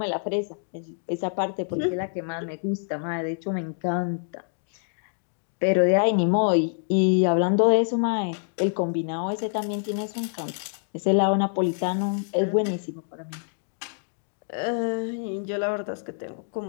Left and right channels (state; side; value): silent; right; digital silence